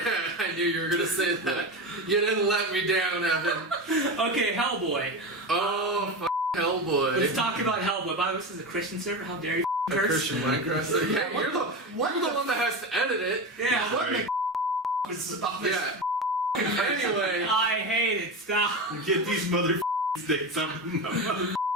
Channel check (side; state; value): both; normal; correlation 0.22